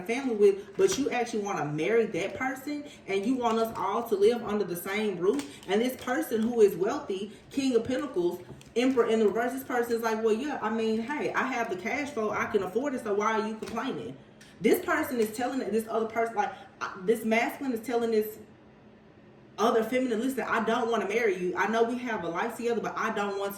family with, but you actually want to marry that person and you want us all to live under the same roof? And this person who is wealthy, King of Pentacles, Emperor in the reverse, this person is like, well, yeah, I mean, hey, I have the cash flow, I can afford it, so why are you complaining? This person is telling this other person, like this masculine is telling this other feminine, listen, I don't want to marry you. I know we have a life together, but I don't want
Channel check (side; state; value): both; identical; correlation 1.00